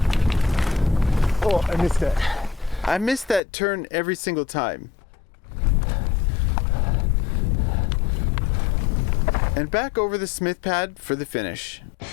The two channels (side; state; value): right; drops out; at 3.4 s